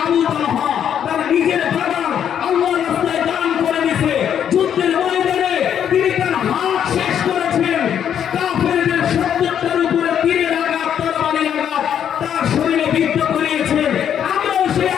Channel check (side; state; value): right; quieter; 9.1 dB